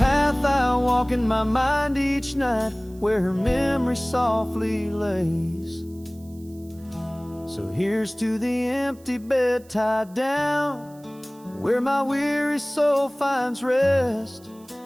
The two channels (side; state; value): right; noise; hiss, 27 dB below the sound